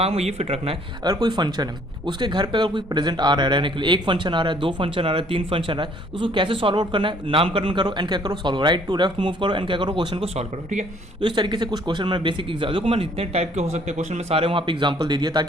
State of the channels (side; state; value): both; normal; correlation 0.60